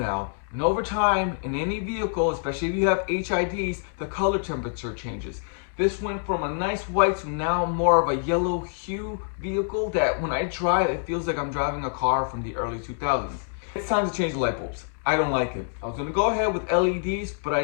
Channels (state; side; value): silent; right; digital silence